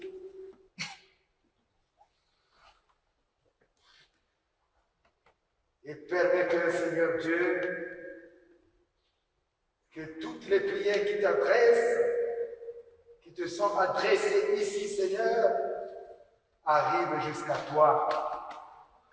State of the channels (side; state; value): both; identical; correlation 1.00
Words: Et permets que, Seigneur Dieu, que toutes les prières qui t'adressent, qui te sont adressées ici, Seigneur, arrivent jusqu'à toi,